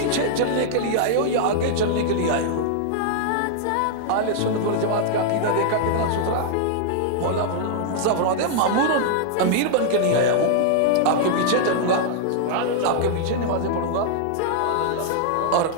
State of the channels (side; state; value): both; different; correlation -0.01